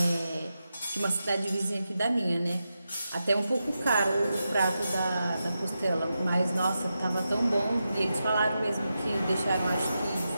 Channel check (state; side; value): inverted; both; correlation -0.89